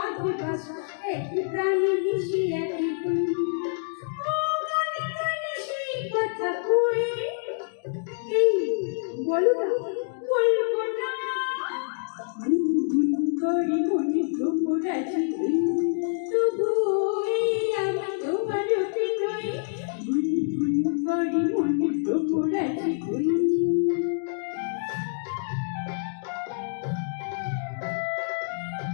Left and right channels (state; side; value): silent; right; digital silence